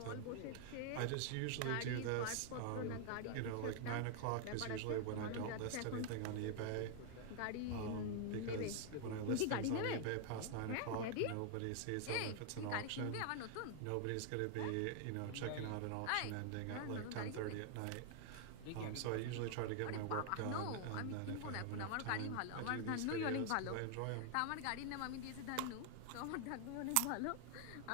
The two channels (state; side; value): different; both; correlation 0.00